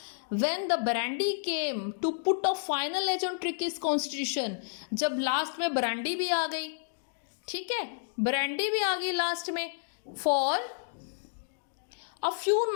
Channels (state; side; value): silent; right; digital silence